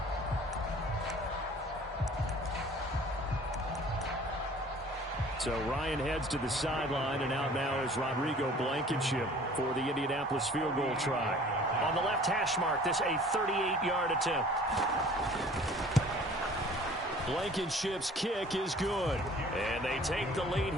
So Ryan heads to the sideline, and out now is Rodrigo Blankenship for the Indianapolis field goal try. On the left hash mark, this a 38-yard attempt. Blankenship's kick is good. And they take the lead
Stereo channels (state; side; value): normal; both; correlation 0.49